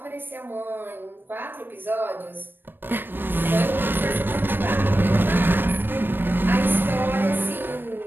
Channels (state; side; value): late; left; 0.096 ms